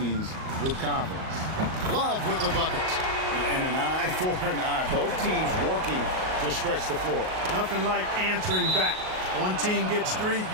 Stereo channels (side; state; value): left; late; 38 ms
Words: with confidence. Love with the bucket. And an eye for an eye. Both teams working to stretch the floor. Nothing like answering back. One team gets three,